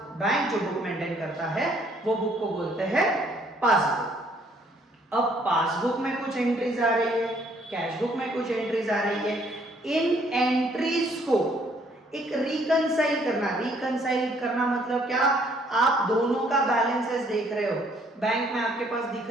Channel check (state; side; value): normal; both; correlation 0.64